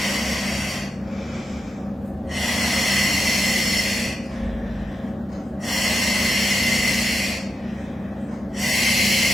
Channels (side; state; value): both; normal; correlation 0.87